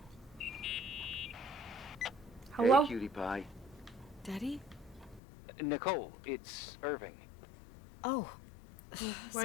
Hello? Hey, cutie pie. Daddy? Nicole, it's Irving. Oh.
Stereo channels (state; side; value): drops out; right; at 5.2 s